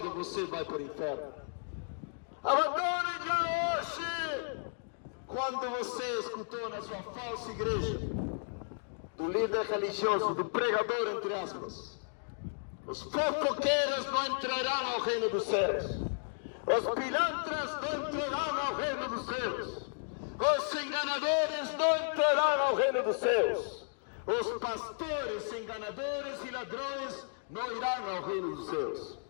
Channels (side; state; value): right; silent; digital silence